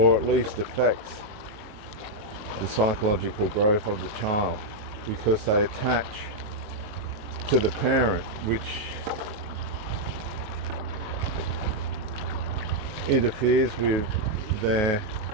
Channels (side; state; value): left; late; 19 ms